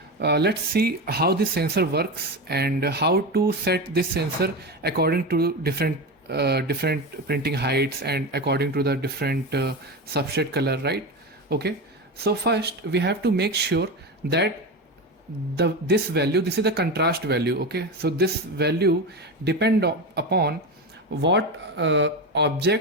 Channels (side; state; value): both; normal; correlation 0.20